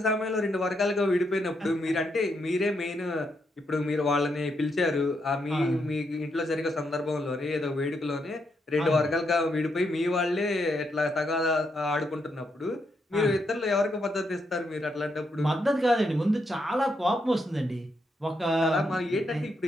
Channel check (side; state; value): both; normal; correlation 0.79